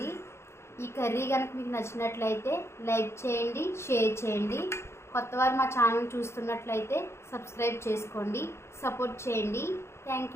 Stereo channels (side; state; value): right; late; 0.13 ms